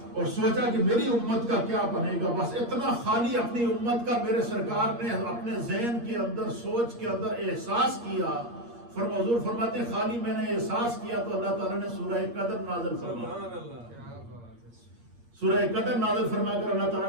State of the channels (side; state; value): left; late; 8.5 ms